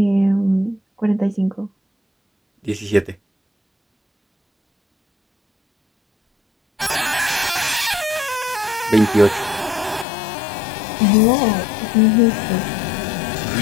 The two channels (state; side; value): drops out; right; at 10.1 s